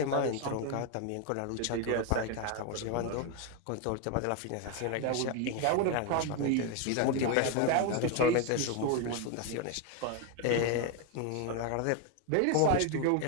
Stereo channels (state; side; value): different; both; correlation 0.01